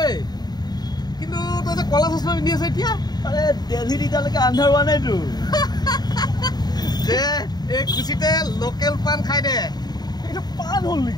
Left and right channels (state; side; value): late; right; 0.20 ms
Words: কিন্তু তই যে কলা চশমা পিন্ধি আছে এতিয়া আৰে দিল্লীত এতিয়ালৈকে আন্ধাৰ হোৱা নাইতো যে এই খুচিতে লোকেল পান খাই দে এইটো পান হ'ল